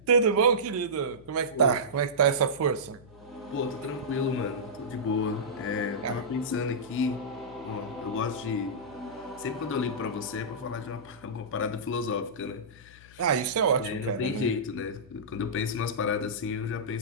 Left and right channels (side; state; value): left; noise; hum, 22 dB below the sound